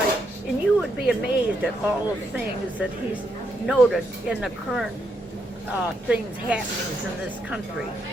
And you would be amazed at all the things that he's noted in the current things happenings in this country,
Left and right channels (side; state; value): both; normal; correlation 0.78